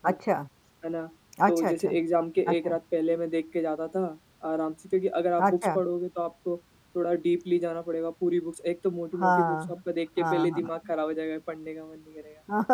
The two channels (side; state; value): both; identical; correlation 1.00